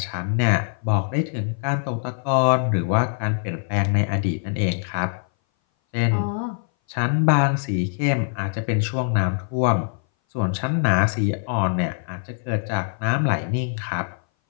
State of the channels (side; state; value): right; silent; 59 dB below the other